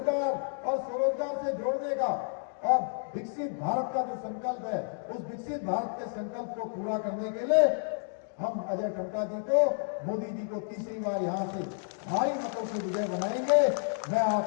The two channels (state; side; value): silent; right; digital silence